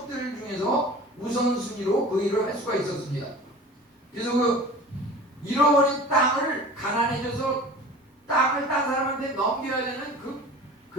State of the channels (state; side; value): normal; both; correlation 0.40